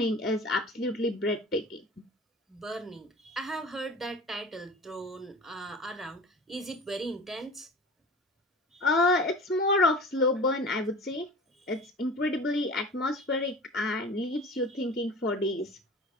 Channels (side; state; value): both; normal; correlation 0.38